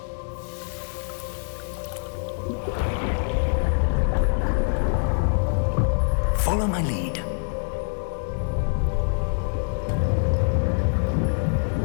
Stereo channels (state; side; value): silent; right; 60 dB below the other